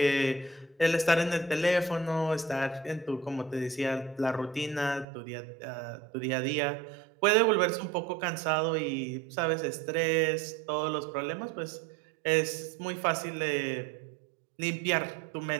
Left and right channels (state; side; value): drops out; left; at 5.1 s